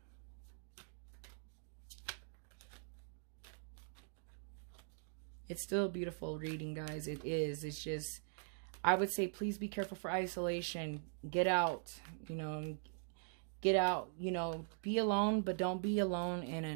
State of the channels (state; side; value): silent; left; digital silence